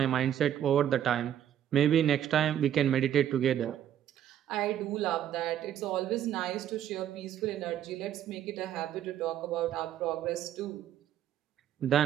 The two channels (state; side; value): quieter; left; 10.6 dB